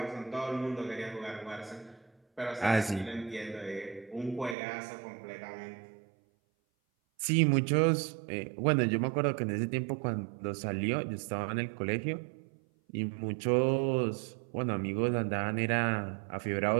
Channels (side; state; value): left; drops out; at 4.5 s